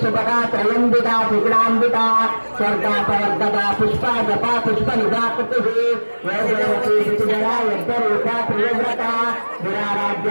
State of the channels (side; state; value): both; inverted; correlation -1.00